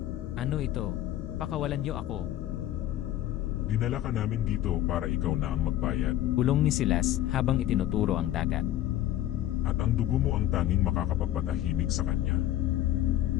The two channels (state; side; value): quieter; right; 13.3 dB